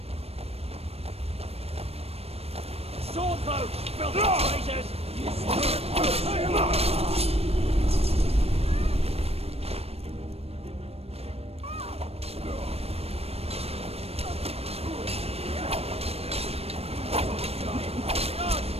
Swordboat! Filthy traitors!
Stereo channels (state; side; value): late; left; 0.29 ms